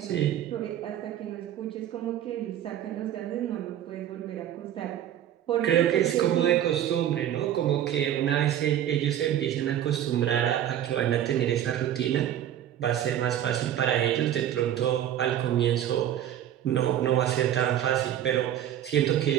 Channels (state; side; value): quieter; left; 11.1 dB